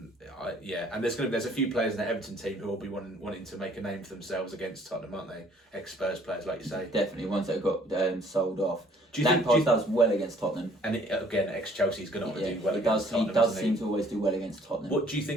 there's a few players in the Everton team who will be wanting to make a name for themselves against Tottenham, aren't they? Ex-Spurs players, like you say. Definitely ones that got sold off. Lampard does well against Tottenham. And again, ex-Chelsea's going to want to do well against Tottenham. He does seem to always do well against Tottenham. What do you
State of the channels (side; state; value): both; normal; correlation 0.59